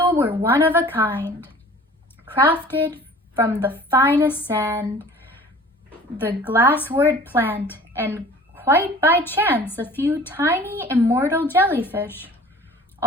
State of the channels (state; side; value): normal; both; correlation 0.46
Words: were one of a kind, crafted from the finest sand, the glasswort plant, and quite by chance a few tiny immortal jellyfish,